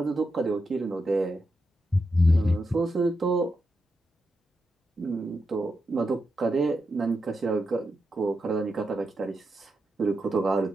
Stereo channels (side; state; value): both; normal; correlation 0.86